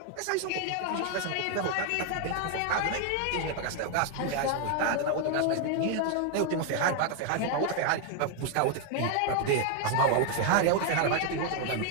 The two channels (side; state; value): both; different; correlation 0.00